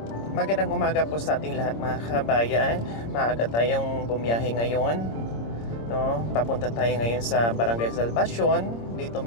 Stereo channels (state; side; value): late; right; 26 ms